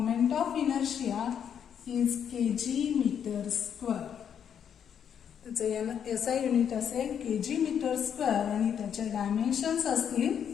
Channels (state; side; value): quieter; right; 8.3 dB